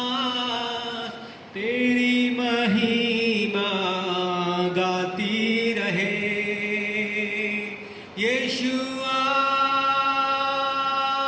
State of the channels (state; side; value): identical; both; correlation 1.00